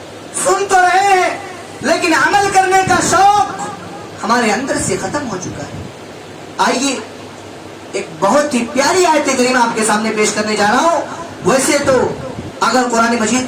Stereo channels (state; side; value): identical; both; correlation 1.00